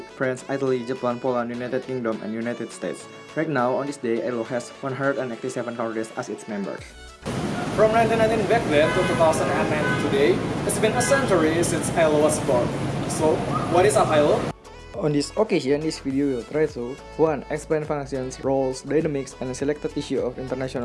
France, Italy, Japan, Poland, United Kingdom, and United States. Right now, on this day, ILO has 187 countries as its members. From 1919 back then to 2009 today, it's been a century since ILO was born. So, what is an ILO? On this occasion, this video will try to 1. Explain functions, roles, dynamics, and selected issue of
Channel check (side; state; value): both; identical; correlation 1.00